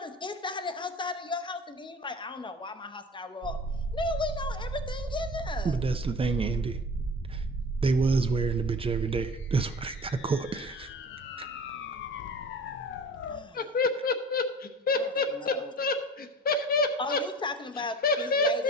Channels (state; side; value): normal; both; correlation 0.38